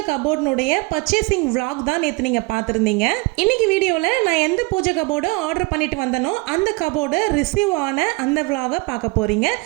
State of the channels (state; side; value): quieter; left; 25.8 dB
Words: கபோர்டினுடைய பர்ச்சேசிங் vlog தான் நேற்று நீங்கள் பார்த்துருந்தீங்க. இன்னைக்கு வீடியோவில் நான் எந்த பூஜை கபோர்டு ஆர்டர் பண்ணிட்டு வந்தனோ அந்த கபோர்டு ரிசீவ் ஆன அந்த vlog பார்க்க போகிறீங்க.